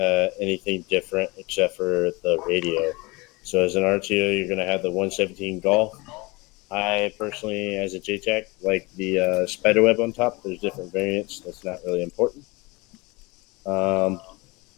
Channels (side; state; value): right; quieter; 24.9 dB